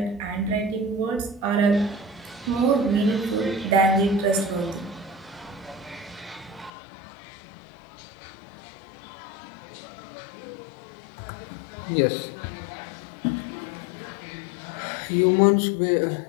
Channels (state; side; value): drops out; right; at 6.7 s